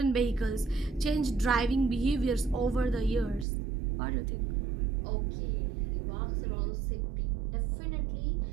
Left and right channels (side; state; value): left; drops out; at 3.5 s